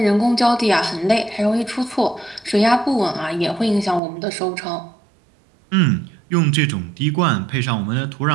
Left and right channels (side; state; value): left; drops out; at 4.0 s